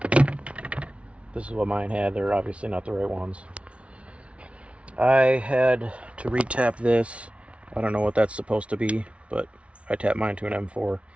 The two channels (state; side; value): late; left; 0.062 ms